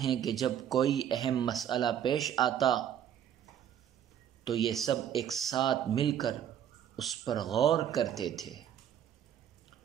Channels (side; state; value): left; quieter; 9.7 dB